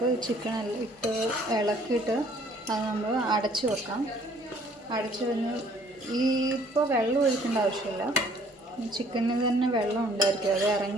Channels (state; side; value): normal; both; correlation 0.59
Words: ചിക്കൻ ഇട്ട് ഇളക്കിയിട്ട് അത് നമ്മൾ അടച്ച് വെക്കാം. അടച്ച് കഴിഞ്ഞ് ഇപ്പോൾ വെള്ളം ഒഴിക്കേണ്ട ആവശ്യമില്ല. ചിക്കനിൽ തന്നെ വെള്ളം ഉണ്ടായിരിക്കും. അത്